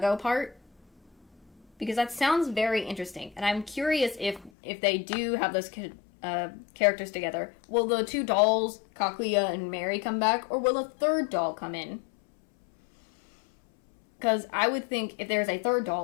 part. Because that sounds very interesting. And I'm curious if they do have those characters together. Will the two dolls, Kaguya and Mary, come back? Or will a third doll come in? Because I would think if there's a third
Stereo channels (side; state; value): right; drops out; at 4.5 s